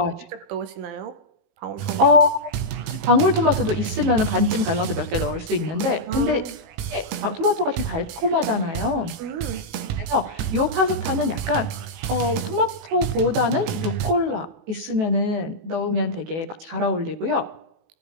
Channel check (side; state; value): left; late; 18 ms